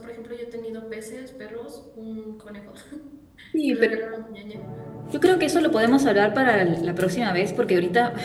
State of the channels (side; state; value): both; identical; correlation 1.00